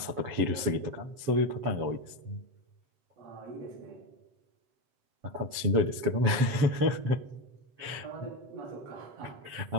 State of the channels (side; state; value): left; late; 7.2 ms